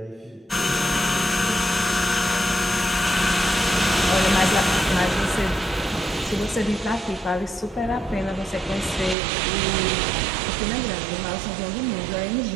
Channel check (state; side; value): drops out; left; at 9.2 s